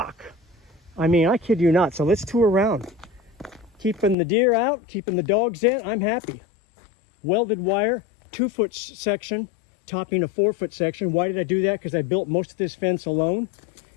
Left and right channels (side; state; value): right; drops out; at 4.2 s